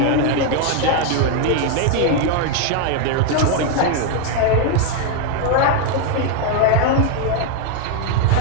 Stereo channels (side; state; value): both; different; correlation 0.01